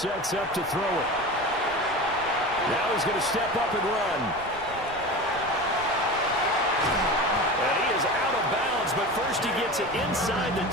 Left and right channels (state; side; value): noise; right; rumble, 18 dB below the sound